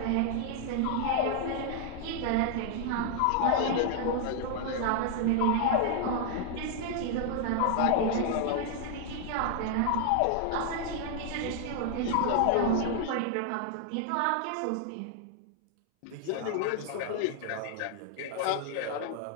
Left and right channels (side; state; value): both; different; correlation 0.00